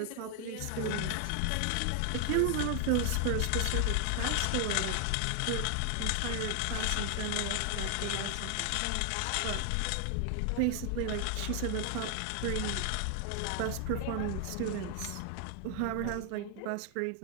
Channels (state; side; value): different; both; correlation 0.00